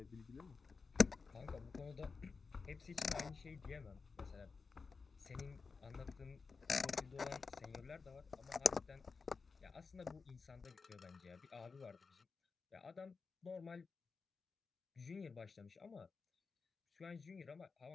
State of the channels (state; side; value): quieter; right; 4.8 dB